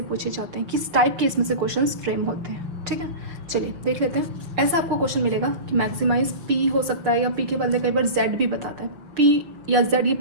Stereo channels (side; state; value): left; late; 6.2 ms